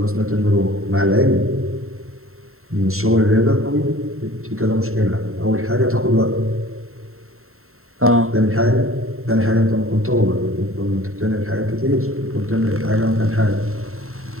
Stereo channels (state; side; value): late; left; 0.62 ms